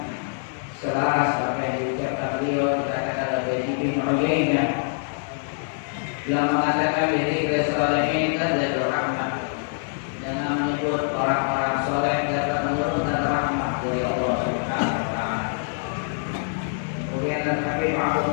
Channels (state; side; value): silent; right; 57 dB below the other